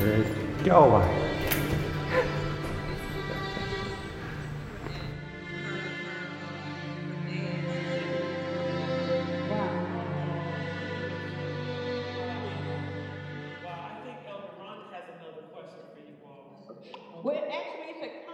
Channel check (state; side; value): identical; both; correlation 1.00